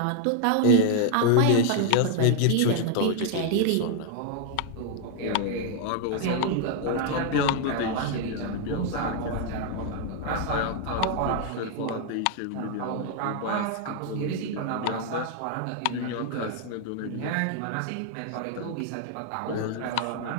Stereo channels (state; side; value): different; both; correlation 0.00